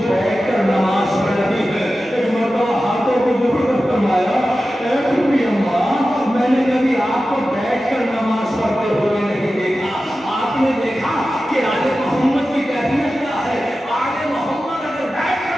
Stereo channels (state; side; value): normal; both; correlation 0.94